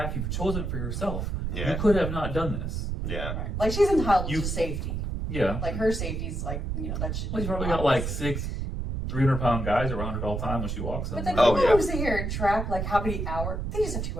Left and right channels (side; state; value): right; noise; rumble, 3 dB below the sound